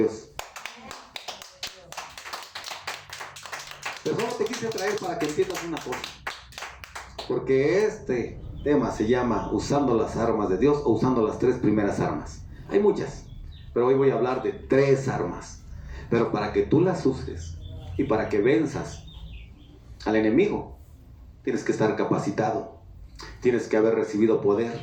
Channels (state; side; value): identical; both; correlation 1.00